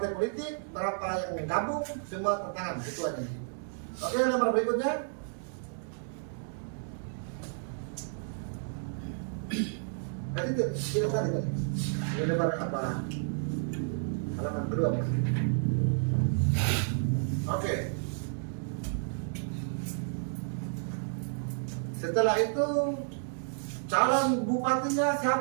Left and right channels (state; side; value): silent; left; digital silence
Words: politik, berapa yang gabung, semua tanda tangan ketuanya. Oke, nomor berikutnya. Tadi tidak tadi. Ini nomor apa? Halaman kedua, Mas. Oke. Setelah itu calon bupatinya